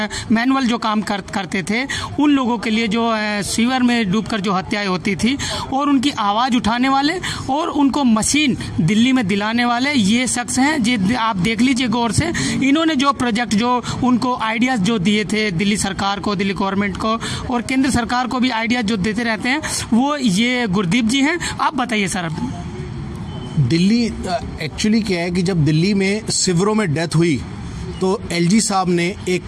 मैनुअल जो काम करते थे, उन लोगों के लिए जो सीवर में डूबकर जो हत्याएं होती थी, और उनकी आवाज़ उठाने वाले और उनको मशीन दिल्ली में दिलाने वाले ये शख्स हैं। जी, आप देख लीजिए गौर से, इन्होंने जो प्रोजेक्ट, जो उनको आइडियाज़ जो दिए थे दिल्ली सरकार को, दिल्ली गवर्नमेंट को और केंद्र सरकार को भी आइडियाज़ जो देते रहते हैं, वो ये गुरदीप जी हैं। आप बताइए सर। दिल्ली एक्चुअली क्या है कि जब दिल्ली में शिविरों में डेथ हुई तो एलजी साहब ने एक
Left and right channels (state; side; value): identical; both; correlation 1.00